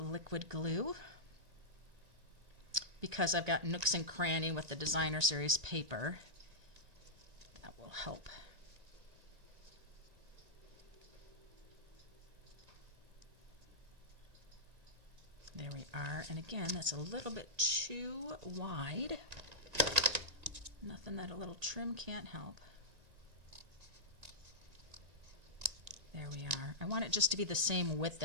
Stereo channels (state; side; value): late; left; 1.9 ms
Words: glue because I've got nooks and cranny with the Designer Series paper. That will help. There we are. And again, that's a little bit too wide. Nothing that a little trim can't help. There we are. I want it just to be the same width